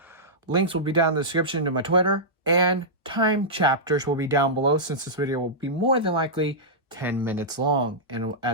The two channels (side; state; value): both; normal; correlation -0.12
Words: Links will be down in the description to my Twitter, and time chapters will be down below since this video will be more than likely 10 minutes long. And